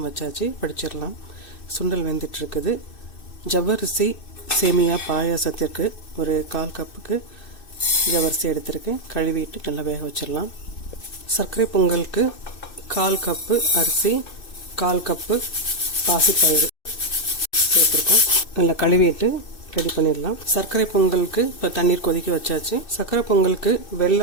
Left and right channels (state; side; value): late; right; 2.6 ms